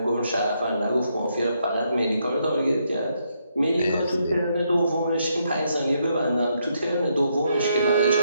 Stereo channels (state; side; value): inverted; both; correlation -0.77